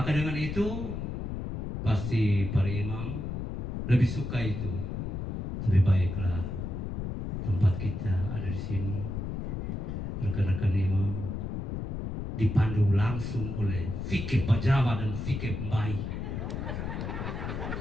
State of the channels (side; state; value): left; noise; rumble, 4 dB below the sound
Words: dengan itu pasti para imam lebih suka itu. Lebih baiklah tempat kita ada di sini. Rekan-rekan imam dipandu langsung oleh fikih Pajawa dan fikih Mbai.